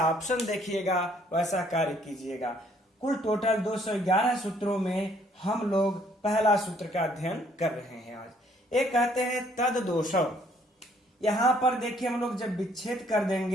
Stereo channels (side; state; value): both; normal; correlation 0.64